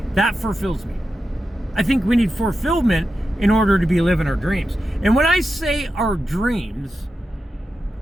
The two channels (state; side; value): normal; both; correlation 0.90